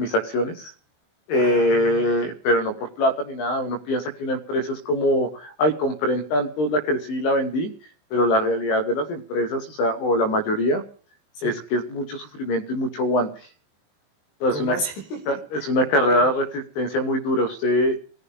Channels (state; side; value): late; right; 20 ms